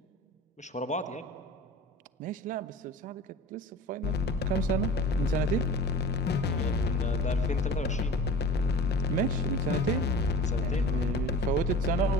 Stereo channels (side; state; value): both; normal; correlation 0.40